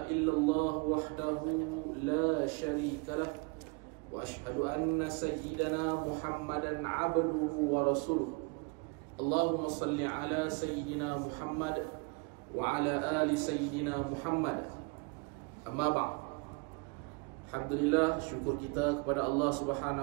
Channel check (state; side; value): quieter; left; 31.5 dB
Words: illallah wahdahu la syarika lah wa asyhadu anna sayyidana Muhammadan abduhu wa rasuluh. Allahumma salli ala sayyidina Muhammad wa ala ali sayyidina Muhammad. Amma ba'd. Alhamdulillah, syukur kita kepada Allah